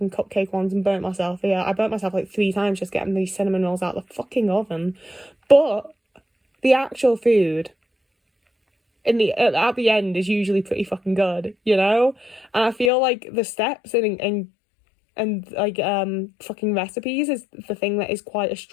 cupcake ones and burnt myself. Yeah, I burnt myself like 3 times just getting these cinnamon rolls out of the fucking oven. but the actual food at the end is usually pretty fucking good, you know? And I feel like the steps and like fucking recipes is the thing that is quite a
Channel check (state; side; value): drops out; right; at 12.9 s